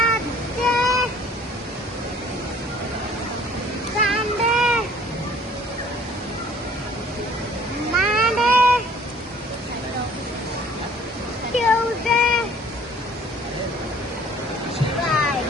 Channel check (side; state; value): both; normal; correlation 0.54